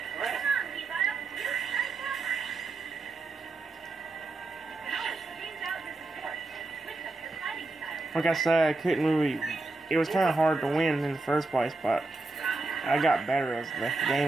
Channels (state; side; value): quieter; left; 3.3 dB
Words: crap. Like I said, I couldn't really... It was kind of hard to win in the first place, but I got better as the